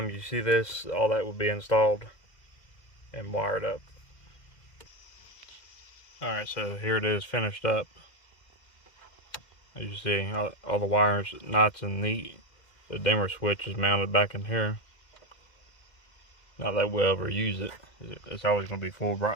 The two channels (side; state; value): right; late; 2.0 ms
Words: you see this, all that will be installed and wired up. Alright, so here it is finished up. As you see, all the wires nice and neat. The dimmer switch is mounted back in here. Not that we'll ever use it. It's always going to be full